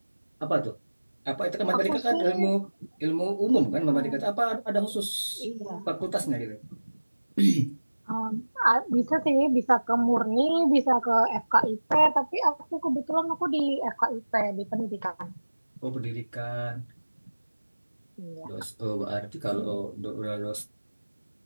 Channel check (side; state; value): both; inverted; correlation -1.00